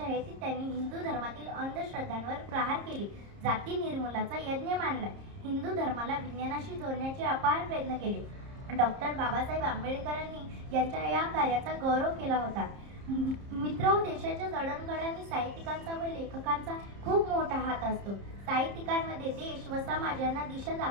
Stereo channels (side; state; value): left; late; 30 ms